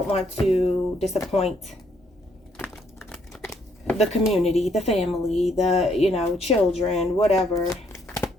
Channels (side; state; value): both; normal; correlation 0.70